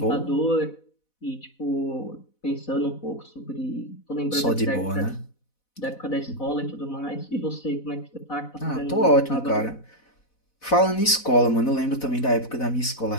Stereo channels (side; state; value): right; late; 4.1 ms